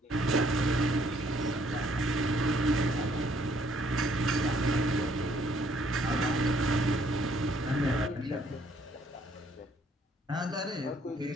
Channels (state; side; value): normal; both; correlation 0.65